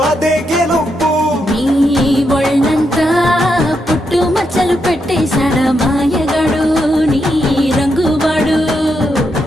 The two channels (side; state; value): both; normal; correlation 0.82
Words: అదే గెలుపు. నీ ఒళ్ళంతా పుట్టు మచ్చలు పెట్టేశాడ మాయగాడు నీ రంగువాడు.